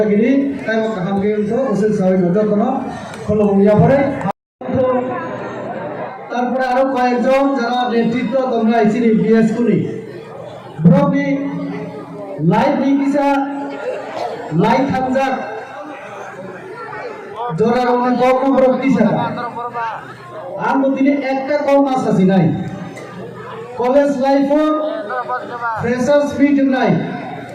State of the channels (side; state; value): both; identical; correlation 1.00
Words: তাই হামকে তো ওসে সবাই যতন খোলো ইয়া পরে তারপরে আরো কয়েকজন যারা নেতৃত্ব তোমরা আইছিনি বিএস করি ব্রবি লাইভ নিকিসা লাইভ হামজাক জোরার অনেক কম রক্তি ছাড়া আর দিনে একটা কম মাস আছে নাই কলেজ লাইফও ফ্রেশার্স মিট নাই